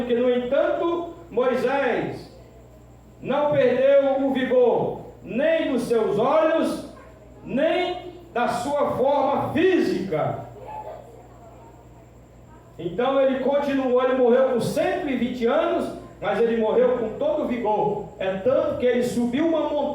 que, no entanto, Moisés não perdeu o vigor, nem dos seus olhos, nem da sua forma física. Então ele continuou, ele morreu com 120 anos, mas ele morreu com todo o vigor. É tanto que ele subiu uma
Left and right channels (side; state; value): both; identical; correlation 1.00